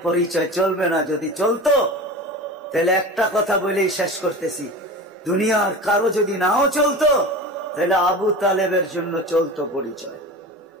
পরিচয় চলবে না। যদি চলতো তাহলে একটা কথা বলেই শেষ করতেছি, দুনিয়ার কারো যদি নাও চলতো তাহলে আবু তালেবের জন্য চলতো পরিচয়।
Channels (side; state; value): both; normal; correlation 0.32